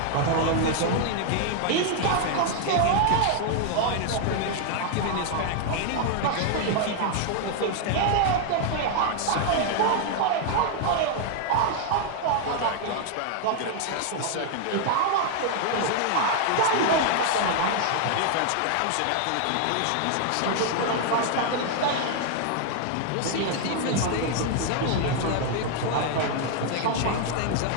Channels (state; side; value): different; both; correlation 0.00